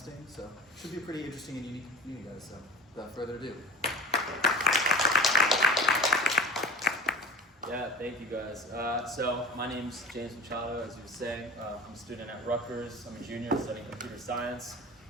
so it should be a pretty interesting and unique meeting, guys. So without further ado. Yeah, thank you guys. So my name's James Machado, as you were saying. I'm a student at Rutgers. I'm a junior studying computer science.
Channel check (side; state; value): both; normal; correlation 0.37